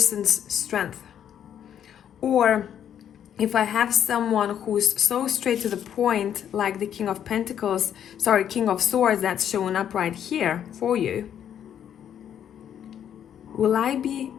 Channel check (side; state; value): right; quieter; 9.5 dB